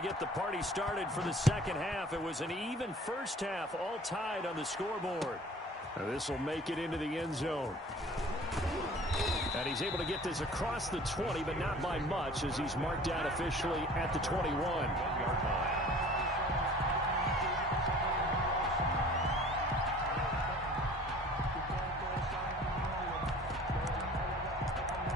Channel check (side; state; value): both; normal; correlation 0.47